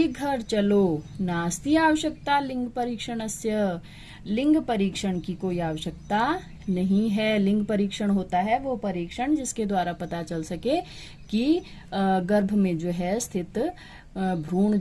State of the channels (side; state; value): both; identical; correlation 1.00